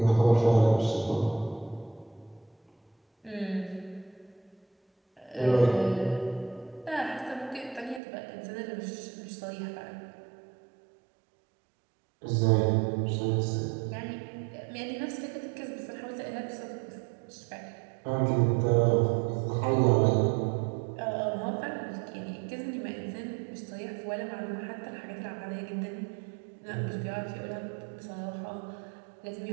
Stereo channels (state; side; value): drops out; left; at 8.0 s